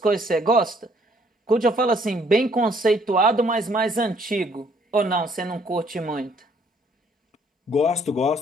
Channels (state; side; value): normal; both; correlation 0.64